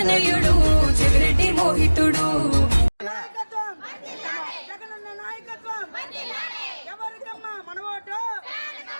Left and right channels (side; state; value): both; inverted; correlation -1.00